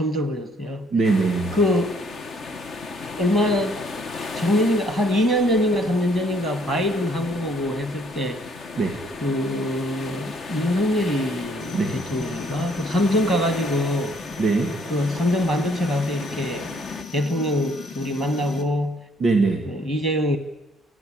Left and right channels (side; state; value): both; normal; correlation 0.64